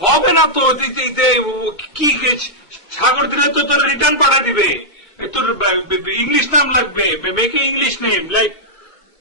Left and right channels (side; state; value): right; late; 2.2 ms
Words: হবে না তো। কি সাগর দিলে তো তোর রিটার্ন পাঠা দিবে। তোর ইংলিশ নাম লাগবে, মেকে ইংলিশ নেম লাইক